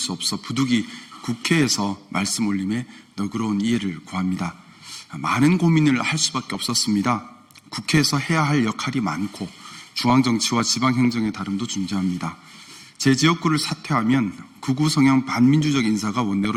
없어 부득이 국회에서 말씀 올림에 너그러운 이해를 구합니다. 많은 고민을 할 수밖에 없었습니다. 국회에서 해야 할 역할이 많고 중앙정치와 지방행정의 다름도 존재합니다. 제 지역구를 사퇴하면 극우 성향 반민주적 인사가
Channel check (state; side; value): identical; both; correlation 1.00